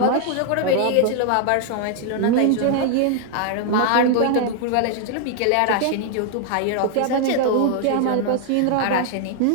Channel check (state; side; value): different; both; correlation 0.00